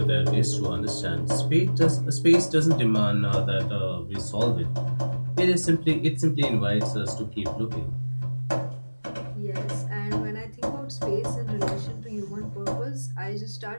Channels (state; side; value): inverted; both; correlation -1.00